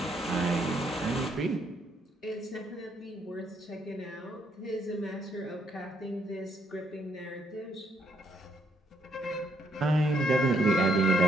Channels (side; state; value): both; normal; correlation 0.73